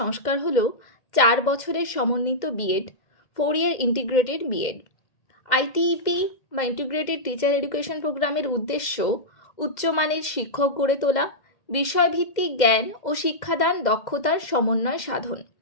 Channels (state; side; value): late; right; 2.0 ms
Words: হল 4 বছরের সমন্বিত B Ed 4-year integrated B Ed. ITEP বা ইন্টিগ্রেটেড টিচার এডুকেশন প্রোগ্রামের উদ্দেশ্য উচ্চমানের শিক্ষক গড়ে তোলা, বিষয়ভিত্তিক জ্ঞান ও শিক্ষাদান দক্ষতার সমন্বয় সাধন।